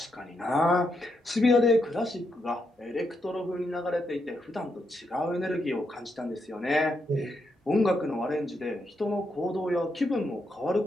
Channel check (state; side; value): normal; both; correlation 0.81